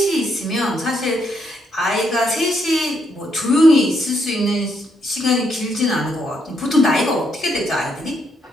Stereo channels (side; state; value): both; normal; correlation 0.76